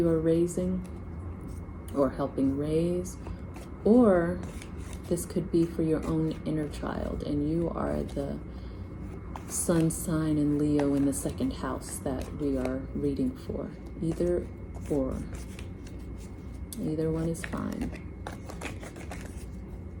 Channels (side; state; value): both; identical; correlation 1.00